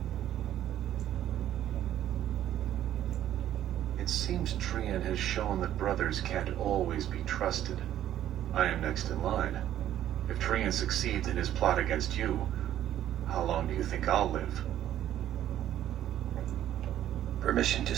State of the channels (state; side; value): quieter; left; 11.8 dB